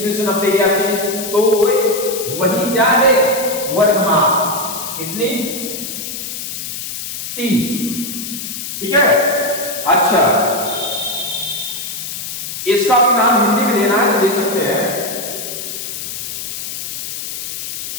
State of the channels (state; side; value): noise; left; hiss, 6 dB below the sound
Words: में से 90 गया 30, तो वही क्या है? वर्गमाप। कितनी? 30। ठीक है। अच्छा, इसका भी नाम हिंदी में देना है तो दे सकते हैं,